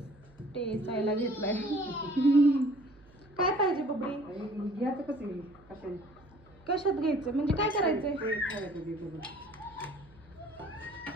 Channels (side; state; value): right; noise; hum, 26 dB below the sound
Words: टेचायला घेतलाय. काय पाहिजे बबडी? घ्यायचं कसं कशात घ्यायचं म्हणजे काय करायचंय?